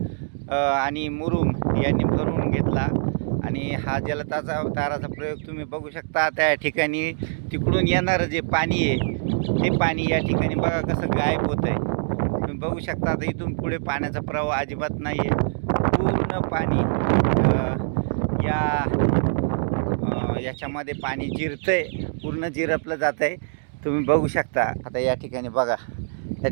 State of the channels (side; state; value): left; silent; digital silence